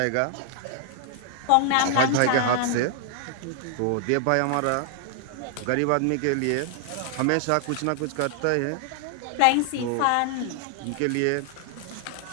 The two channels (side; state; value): both; different; correlation 0.00